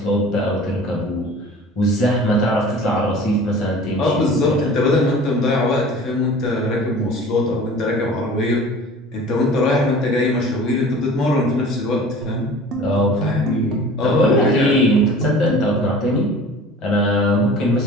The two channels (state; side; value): normal; both; correlation 0.43